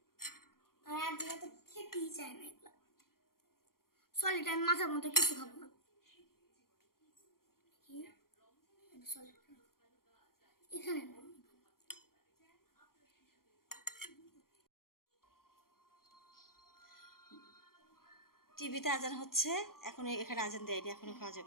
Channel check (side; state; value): right; late; 0.92 ms